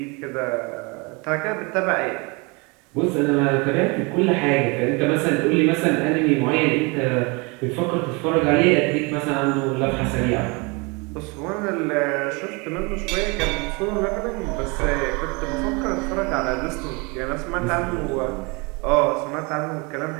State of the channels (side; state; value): left; quieter; 28.9 dB